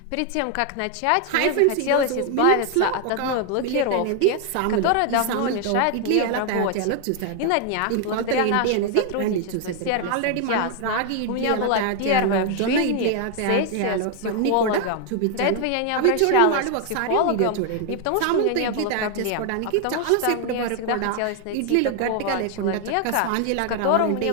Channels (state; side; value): different; both; correlation 0.00